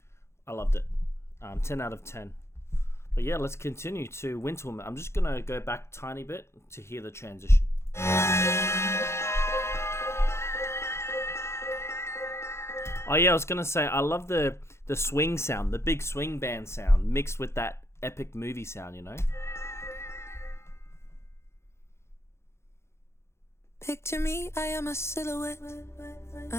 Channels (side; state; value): right; late; 0.13 ms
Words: I loved it. 10 out of 10. But yeah, let's continue to Winter Woman. I'm just going to go back a tiny bit to hear the transition. Oh yeah, I was gonna say I love the swing sound, the big swing band sound mixed with that epic movie sound, you know? Picture me, I am a silhouette.